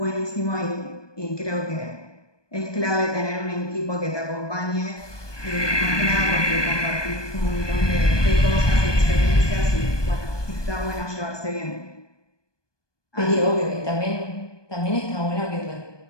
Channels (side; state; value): right; late; 1.2 ms